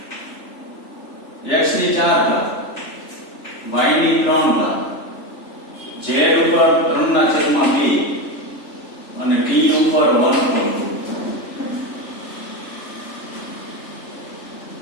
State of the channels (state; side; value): late; right; 3.4 ms